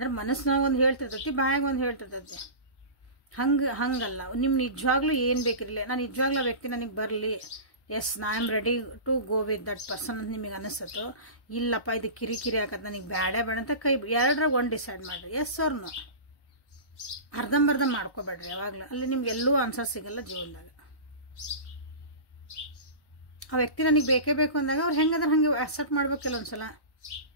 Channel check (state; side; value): late; right; 1.1 ms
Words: ಮನಸ್ಸಿನಾಗ ಒಂದು ಹೇಳ್ತಿರ್ತೈತಿ, ಬಾಯಾಗ ಒಂದು ಹೇಳ್ತಿರ್ತೈತಿ. ಹಂಗಲ್ಲ. ನಿಮ್ಮ ನಿಜವಾಗ್ಲೂ ಏನು ಬೇಕಿರಲಿ, ನಾನು ನಿಜವಾಗ್ಲೂ ಆ ವ್ಯಕ್ತಿ ನನಗೆ ಬರಲಿ, ಎಸ್ ನಾ am ready to go with that person ಅಂತ ನಿಮಗೆ ಅನಿಸ್ತೋ, ಇಲ್ಲಪ್ಪ ಇದು ಕಿರಿಕಿರಿ ಆಗತ್ತೆ ನನಗೆ ಬೇಡ ಅಂತ ಕೈ ಎರಡರಾಗ ಒಂದು ಡಿಸೈಡ್ ಮಾಡಿರಿ. ಎಸ್ ಅವ್ರ ನೋ. ಅರ್ಧಂಬರ್ಧ ಮಾಡ್ಕೋಬೇಡ್ರಿ ಯಾವಾಗಲೂ. ಅಲ್ಲಿ ನಿಮ್ಗೆ ಎಲ್ಲೂ ಆನ್ಸರ್ ಸಿಗಲ್ಲ ಜೀವನದಾಗ. ಆ ವ್ಯಕ್ತಿ ನನಗೆ ಬೇಕೇ ಬೇಕು ಅಂದಾಗ ಅವ್ರು ಹೆಂಗಂದ್ರೆ ಹಂಗೆ ಅಕ್ಸೆಪ್ಟ್ ಮಾಡ್ಬೇಕಿಲ್ಲ ಒಂದ್ಸಲ.